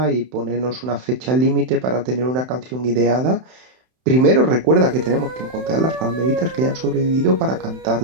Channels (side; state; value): left; late; 31 ms